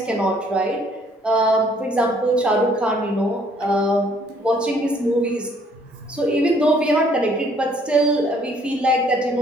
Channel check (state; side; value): normal; both; correlation 0.62